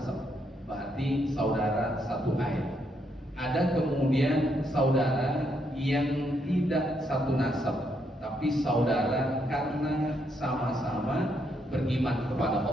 berarti saudara satu air. Ada kemudian saudara yang tidak satu nasab, tapi saudara karena sama-sama beriman kepada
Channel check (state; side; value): normal; both; correlation 0.76